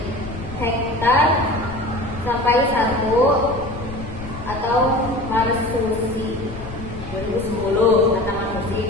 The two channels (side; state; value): left; noise; rumble, 12 dB below the sound